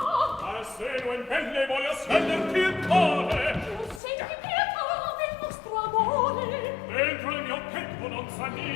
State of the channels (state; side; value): drops out; right; at 4.0 s